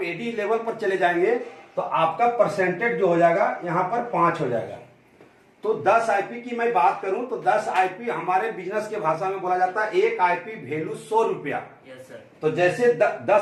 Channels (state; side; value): identical; both; correlation 1.00